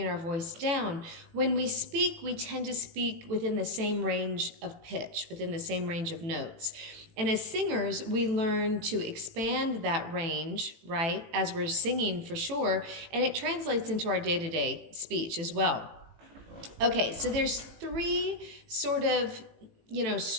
our voice down. When we speak, we tend to speak within the same range of pitch, within the same range of notes. And as singers, we learn to expand that range, right, as we're singing for sure, and it translates into our day-to-day speech as well. Okay, so there's three sort of,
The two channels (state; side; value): late; left; 18 ms